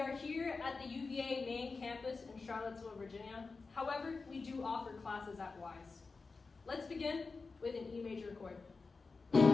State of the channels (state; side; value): quieter; right; 4.2 dB